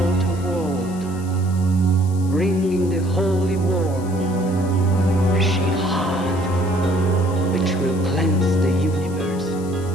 world, bringing the holy war, a shield heart, which will cleanse the universe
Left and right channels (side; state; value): left; noise; hiss, 20 dB below the sound